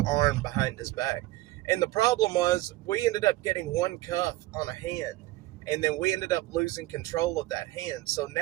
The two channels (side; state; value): left; quieter; 17.8 dB